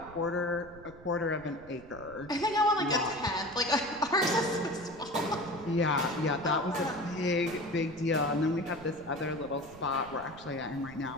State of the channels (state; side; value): noise; right; rumble, 19 dB below the sound